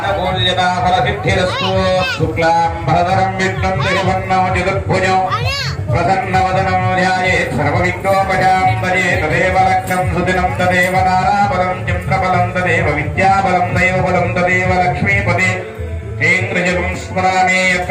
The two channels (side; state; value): both; identical; correlation 1.00